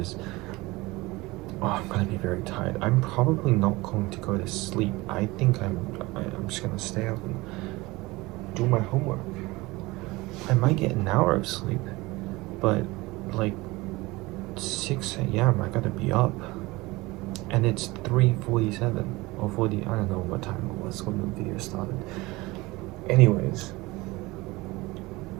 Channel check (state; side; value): quieter; left; 21.7 dB